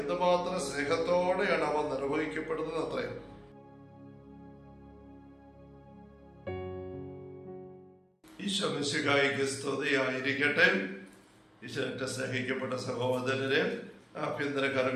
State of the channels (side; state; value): both; identical; correlation 1.00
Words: സ്നേഹത്തോടെയാണ് അവ നിർവഹിക്കപ്പെടുന്നത് അത്രയും. ഈശോ മിശിഹായിക്ക് സ്തുതിയായിരിക്കട്ടെ. ഈശോന്റെ സ്നേഹിക്കപ്പെട്ട സഹോദരരെ, ആഭ്യന്തര